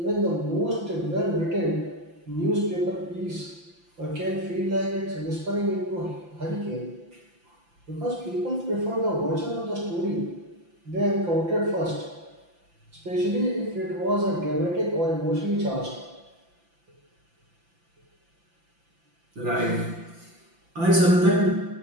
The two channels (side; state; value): left; late; 5.9 ms